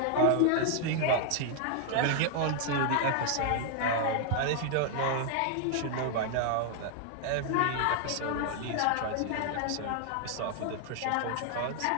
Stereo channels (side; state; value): both; different; correlation 0.00